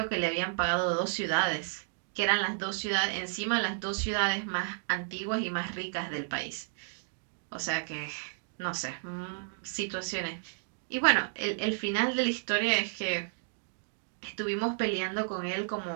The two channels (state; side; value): silent; left; digital silence